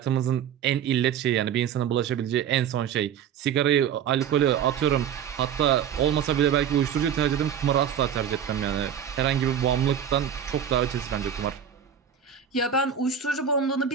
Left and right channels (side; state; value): left; quieter; 8.6 dB